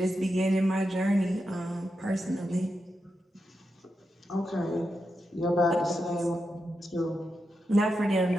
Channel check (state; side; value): normal; both; correlation 0.87